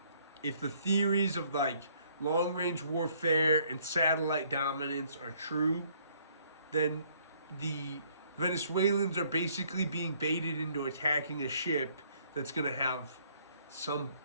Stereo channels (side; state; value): both; inverted; correlation -0.64